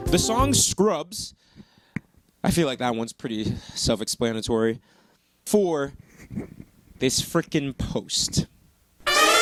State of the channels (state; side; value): identical; both; correlation 1.00